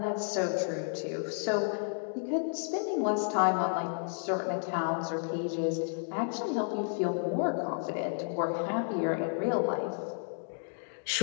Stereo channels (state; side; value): silent; right; digital silence